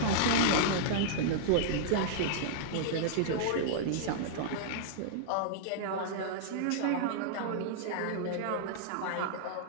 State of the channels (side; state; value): both; different; correlation -0.02